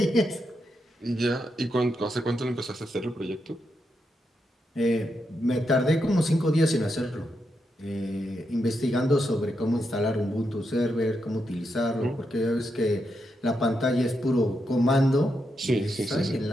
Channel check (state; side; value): normal; both; correlation 0.84